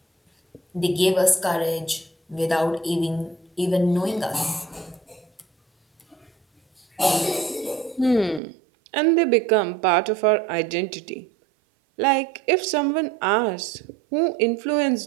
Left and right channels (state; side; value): drops out; left; at 8.4 s